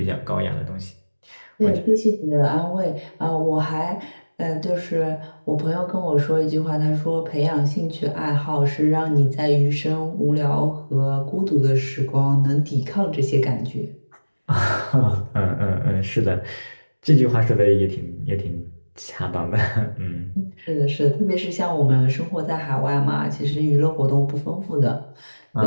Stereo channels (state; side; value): inverted; both; correlation -1.00